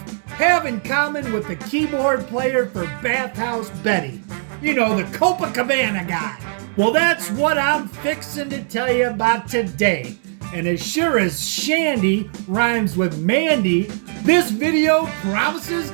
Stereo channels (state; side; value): silent; left; digital silence